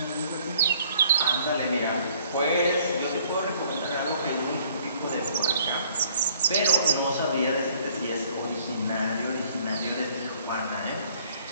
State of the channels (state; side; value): inverted; both; correlation -0.60